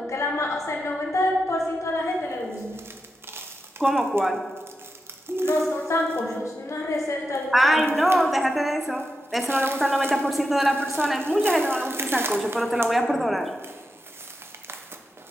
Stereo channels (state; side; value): normal; both; correlation 0.88